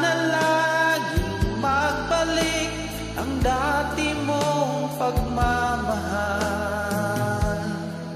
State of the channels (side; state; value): both; identical; correlation 1.00